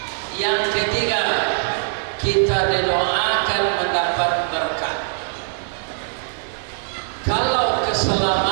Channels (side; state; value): left; silent; digital silence